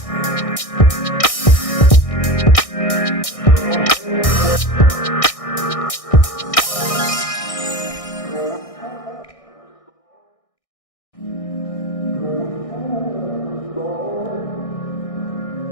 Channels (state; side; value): late; right; 1.6 ms